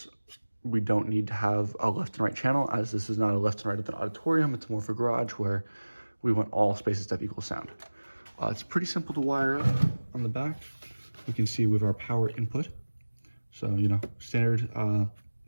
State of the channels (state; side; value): inverted; both; correlation -1.00